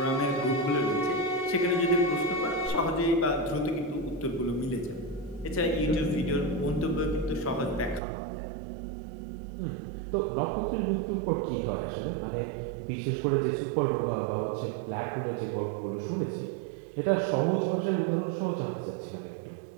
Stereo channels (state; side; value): drops out; left; at 8.0 s